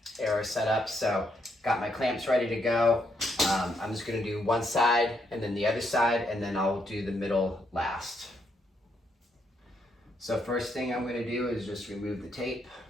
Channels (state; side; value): normal; both; correlation 0.76